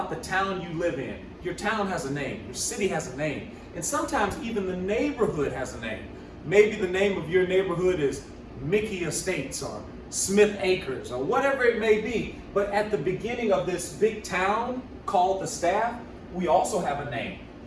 the town you live in, your town has a name, your city has a name, and sometimes even the neighborhood has a name. Maybe the name of your neighborhood is Mickey Estates or Smith Acres or whatever it may be. But at the beginning of this big town called the staff, we also have a name.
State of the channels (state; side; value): identical; both; correlation 1.00